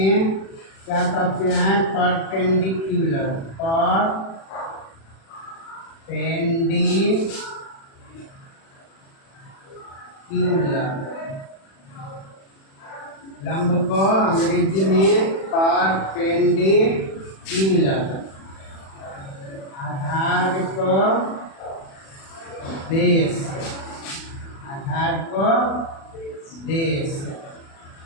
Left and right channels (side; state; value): right; late; 36 ms